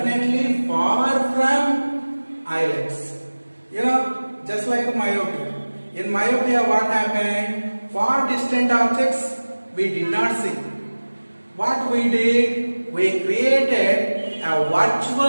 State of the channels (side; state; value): both; inverted; correlation -1.00